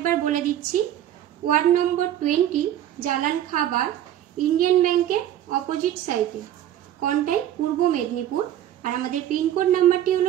বলে দিচ্ছি। ওয়ার্ড নম্বর 20, জালান খাবার, ইন্ডিয়ান ব্যাংকের অপোজিট সাইডে, কন্টাই, পূর্ব মেদিনীপুর। আর আমাদের পিনকোড নাম্বারটি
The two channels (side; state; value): left; quieter; 11.8 dB